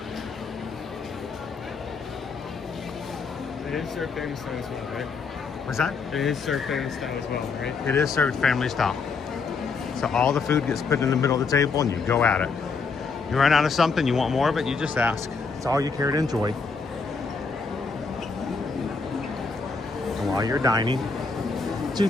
It is served family style as well, right? What's that? It is served family style as well, right? It is served family style. So all the food gets put in the middle of the table and you go at it. You run out of something, you want more of it, you just ask. It's all you care to enjoy. And while you're dining, two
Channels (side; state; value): right; quieter; 4.8 dB